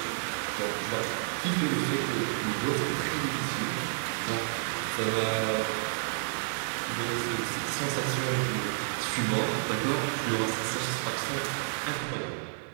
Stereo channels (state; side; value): silent; left; digital silence